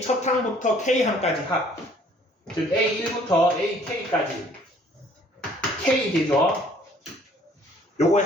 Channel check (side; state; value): both; normal; correlation 0.58